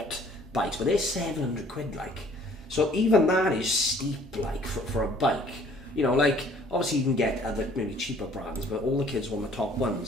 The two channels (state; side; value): normal; both; correlation 0.56